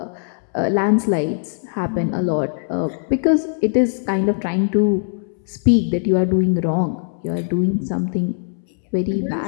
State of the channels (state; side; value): silent; right; 65 dB below the other